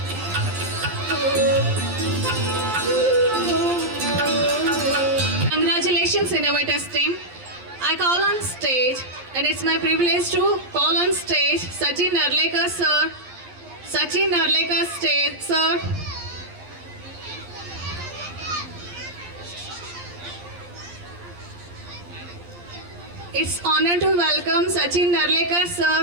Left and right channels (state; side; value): late; left; 11 ms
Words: Congratulations, Innovators team. I call on stage, and it's my privilege to call on stage Sachin Narlekar sir. Sachin Narlekar stage, sir. It's honor to welcome Sachin Narlekar